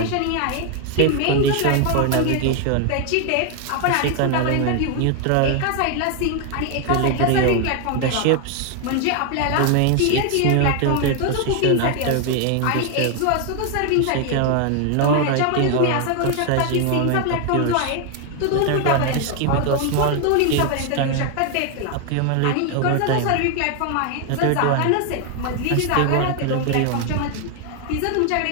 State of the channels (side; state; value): both; different; correlation 0.01